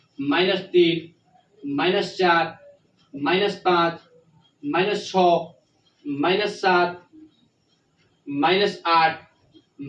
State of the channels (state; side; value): identical; both; correlation 1.00